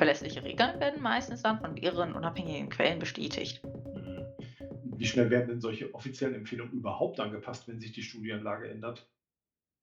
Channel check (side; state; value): both; identical; correlation 1.00